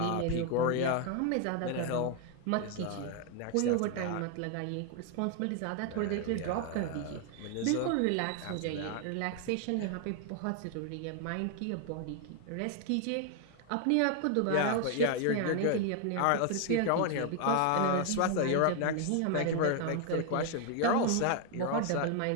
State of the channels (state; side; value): different; both; correlation 0.00